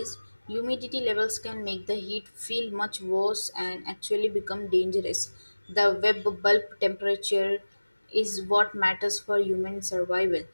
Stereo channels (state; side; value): inverted; both; correlation -1.00